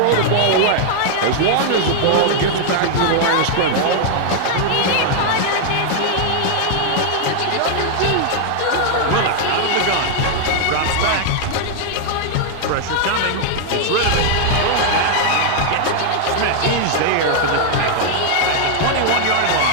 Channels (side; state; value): both; different; correlation 0.00